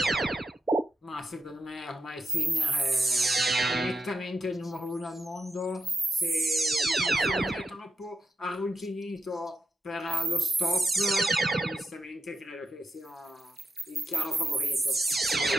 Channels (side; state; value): both; normal; correlation 0.85